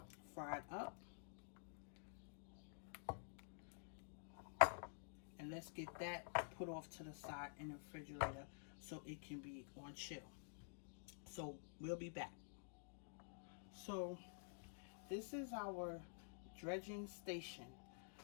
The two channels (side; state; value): right; silent; digital silence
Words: fried up. And let's get that put off to the side in the refrigerator so it can be on chill. So we'll be back. So this is our dredging station.